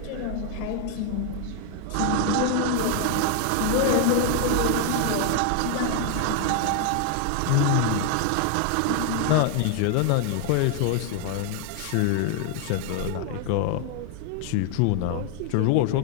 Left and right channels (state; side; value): different; both; correlation 0.00